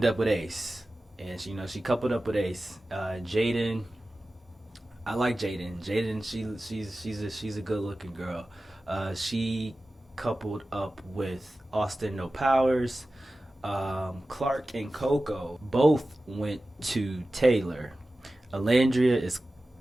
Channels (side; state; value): both; normal; correlation 0.95